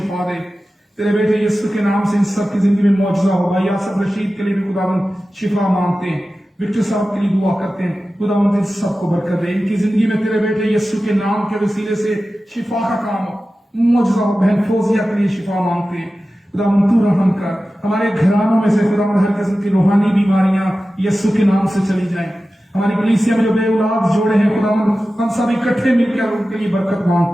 दे। तेरे बेटे यीशु के नाम से इन सब की जिंदगी में मौजूदा हो। भाई आसफ रशीद के लिए भी खुदावंद शिफा मांगते हैं। विक्टर साहब के लिए दुआ करते हैं, खुदावंद इन सबको बरकत दे। इनकी जिंदगी में तेरे बेटे यीशु के नाम के वसीले से शिफा का काम मौजूदा हो। बहन फौजिया के लिए शिफा मांगते हैं, खुदावंद तू रहम कर। हमारे घरानों में से खुदावंद हर किस्म की रूहानी बीमारियां यीशु के नाम से चली जाएं। हमारी कलीसिया में जो बे औलाद जोड़े हैं खुदावंद हम सब इकट्ठे मिलकर उनके लिए बरकत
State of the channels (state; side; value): normal; both; correlation 0.94